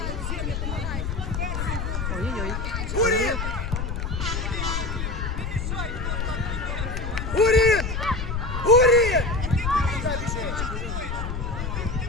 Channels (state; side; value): noise; left; rumble, 3 dB below the sound